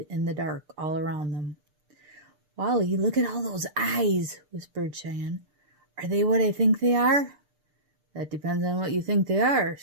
in the dark all around them. "Wally, look at all those eyes," whispered Cheyenne. "Are they what I think they are?" "That depends on what you think they are,"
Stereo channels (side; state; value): left; late; 6.7 ms